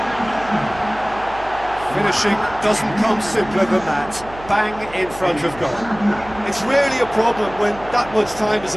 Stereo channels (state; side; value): noise; right; hum, 17 dB below the sound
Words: Finishing doesn't come simpler than that. Bang in front of goal. It's rarely a problem when that much time is